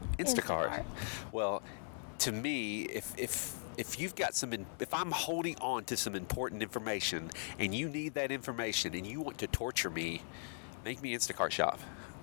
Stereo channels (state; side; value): silent; right; 52 dB below the other